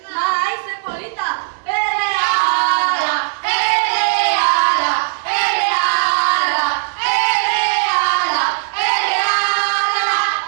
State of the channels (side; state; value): left; silent; 63 dB below the other